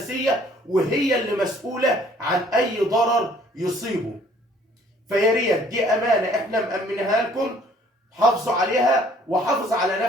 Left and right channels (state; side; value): normal; both; correlation 0.58